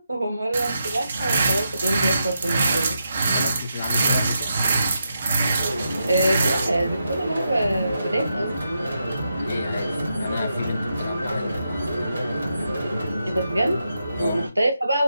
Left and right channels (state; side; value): inverted; both; correlation -0.84